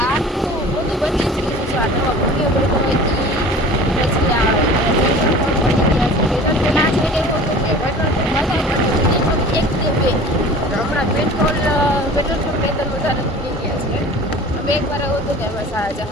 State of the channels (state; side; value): normal; both; correlation 0.42